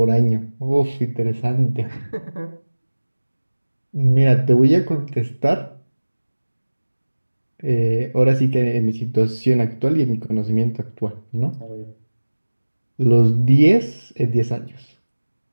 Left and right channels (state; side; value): inverted; both; correlation -1.00